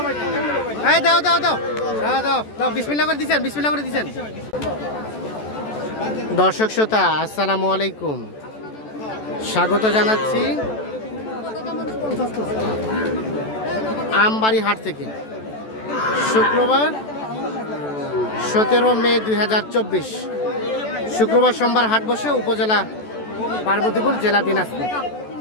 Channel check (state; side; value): late; right; 14 ms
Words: এই দাও দাও দাও দাও দাও দাও বিসমিল্লাহ করে দিছেন বিসমিল্লাহ করে দিছেন। দর্শক শ্রোতা আসসালামু আলাইকুম, স্বাগত জানাচ্ছি আমবাড়ি হাট থেকে। শুক্রবার 17 মে 2024 শুক্রবার সোমবার হাট বসে উপজেলা পার্বতীপুর জেলা দিনাজপুর।